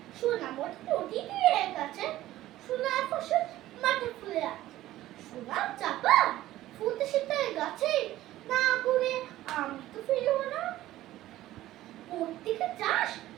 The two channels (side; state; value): left; quieter; 15.0 dB